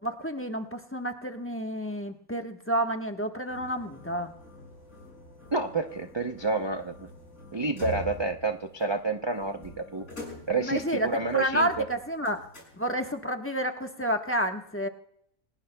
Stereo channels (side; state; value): both; normal; correlation -0.19